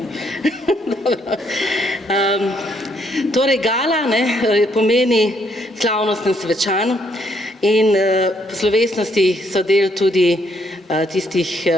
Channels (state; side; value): normal; both; correlation 0.71